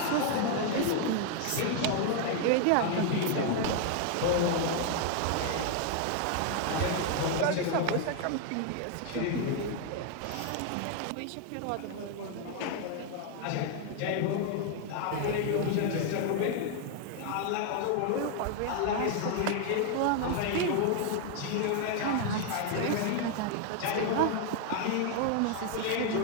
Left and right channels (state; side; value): different; both; correlation 0.00